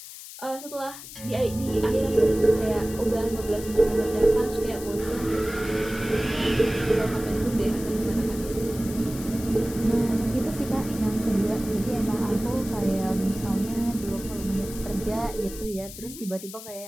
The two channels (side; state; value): left; noise; hiss, 13 dB below the sound